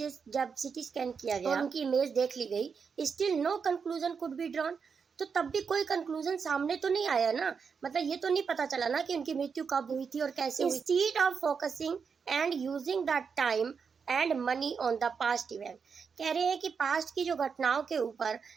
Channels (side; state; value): left; quieter; 5.9 dB